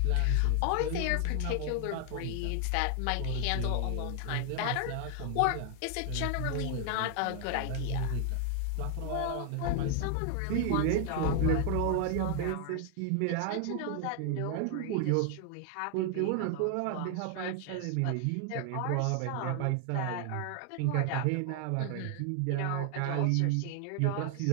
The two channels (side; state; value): both; different; correlation 0.00